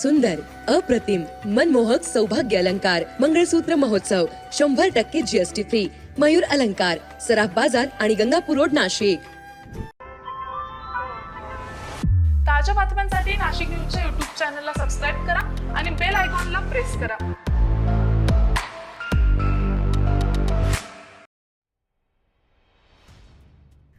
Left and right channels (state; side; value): identical; both; correlation 1.00